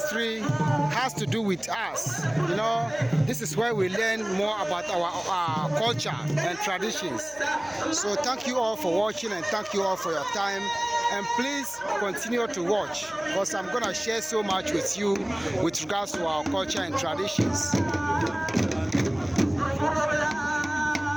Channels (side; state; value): right; noise; hum, 25 dB below the sound